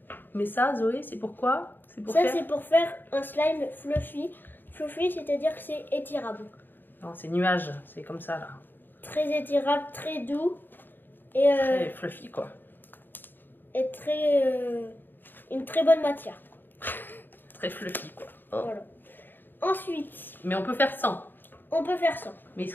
Mais ça, Zoé, c'est pourquoi? C'est pour Ça, faire... c'est pour faire un slime fluffy. Fluffy, c'est-à-dire que c'est étirable. Non, c'est nuage, c'est comme ça là. Très étirable, très doux et, Très fluffy quoi. et une très bonne matière. Très fluffy quoi. Oh. Voilà. Ensuite, Mais on peut faire sans. on peut faire ça. Mais il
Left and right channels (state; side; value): late; right; 0.093 ms